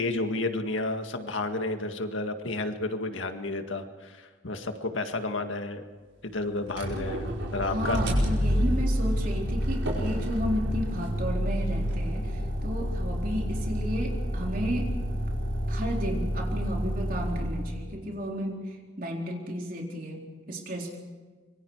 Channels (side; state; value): both; normal; correlation 0.67